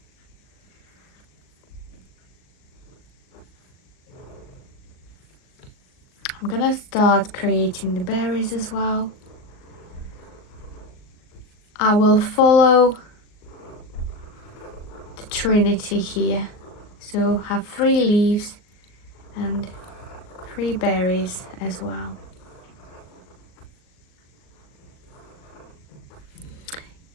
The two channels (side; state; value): right; late; 38 ms